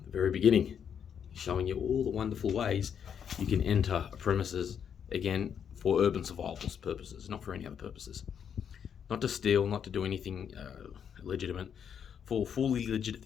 the very beginning, showing you all the wonderful ways you can enter a premises, again, for urban survival purposes, not for any other purposes. Not to steal, not to do anything illegitimate, for fully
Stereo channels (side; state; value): right; quieter; 8.0 dB